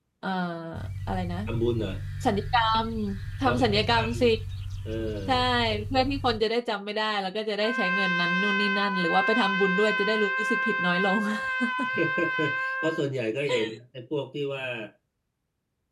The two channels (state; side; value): identical; both; correlation 1.00